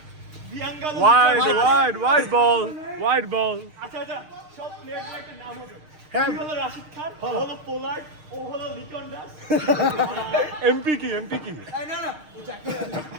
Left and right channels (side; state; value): left; late; 6.5 ms